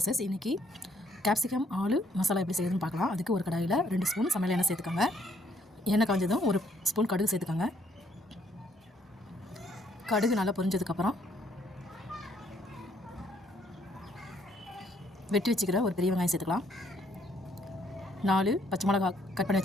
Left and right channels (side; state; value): both; normal; correlation 0.67